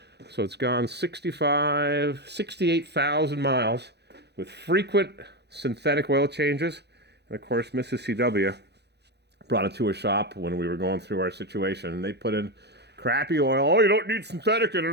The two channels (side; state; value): left; late; 0.49 ms